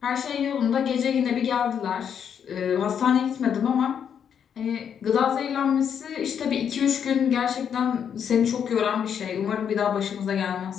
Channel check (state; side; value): quieter; right; 8.0 dB